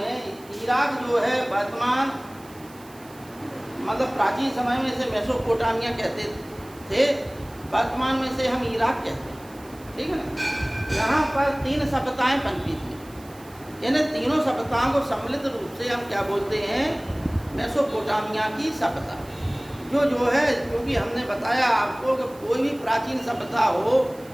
इराक जो है वर्तमान मतलब प्राचीन समय में इसे मेसोपोटामिया कहते थे, वर्तमान में से हम इराक कहते हैं, ठीक है ना। यहाँ पर 3 सभ्यताएं पनपी थी, यानी तीनों सभ्यताओं को सम्मिलित रूप से हम क्या बोलते हैं? मेसोपोटामिया की सभ्यता। जो है, क्योंकि हमने बताया आपको कि कोई भी प्राचीन सभ्यता हो,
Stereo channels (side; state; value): right; noise; hiss, 24 dB below the sound